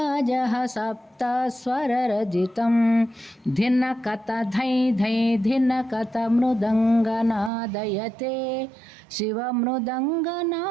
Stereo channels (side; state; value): left; drops out; at 7.5 s